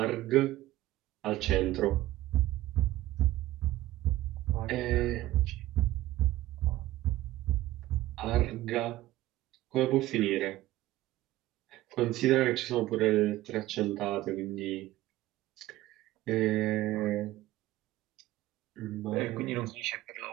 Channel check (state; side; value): quieter; left; 16.0 dB